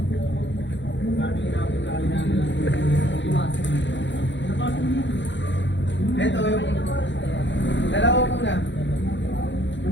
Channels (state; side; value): late; right; 0.53 ms